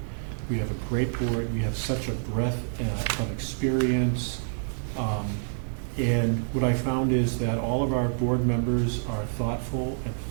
We have a great board. We have such a breadth of experience. And what I found is that all of our board members are thoughtful and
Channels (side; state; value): left; silent; digital silence